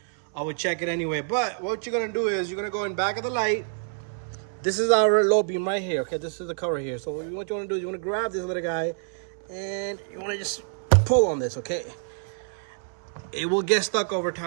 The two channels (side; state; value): left; silent; 60 dB below the other